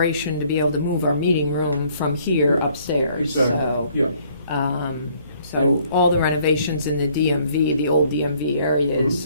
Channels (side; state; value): both; inverted; correlation -0.63